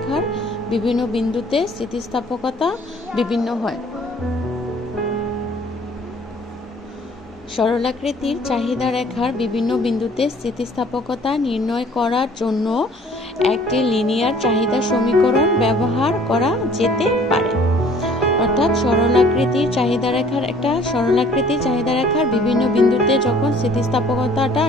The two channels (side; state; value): both; normal; correlation 0.54